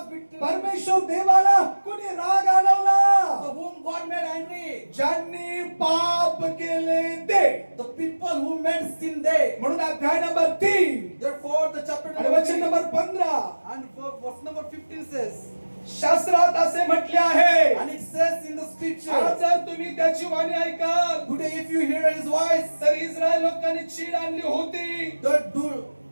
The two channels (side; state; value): both; inverted; correlation -1.00